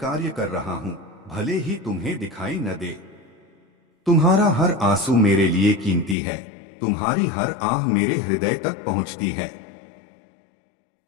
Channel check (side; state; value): right; drops out; at 6.2 s